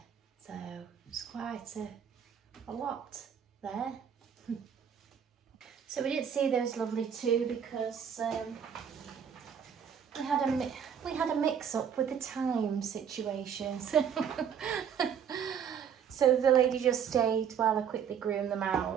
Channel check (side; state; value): left; quieter; 7.9 dB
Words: so it's quite a lot there. So we didn't see those lovely two because we had a mix-up with the time situation. So the lady just stayed while I quickly groomed them